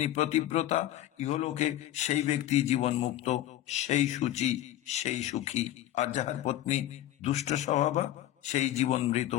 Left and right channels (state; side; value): quieter; right; 13.2 dB